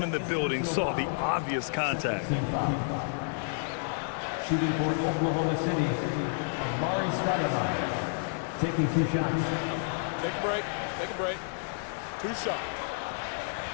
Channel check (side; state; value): right; silent; digital silence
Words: in the building saw the obvious contact. Shooting for Oklahoma City, Amari Stoudemire. Taking 2 shots. Take a break. Take a break. 2 shots.